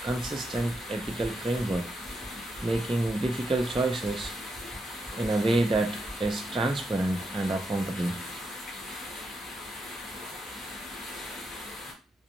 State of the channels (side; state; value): both; normal; correlation 0.83